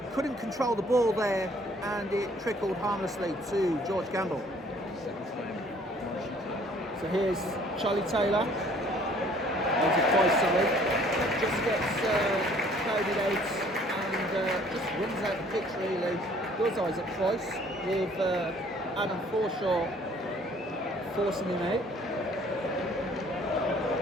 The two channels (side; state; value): both; normal; correlation 0.57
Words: couldn't control the ball there, and it trickled harmlessly to George Campbell. So here's Charlie Taylor. Just gets crowded out and just runs out the pitch really. Does Isaac Price with Adam Forshaw forcing him out.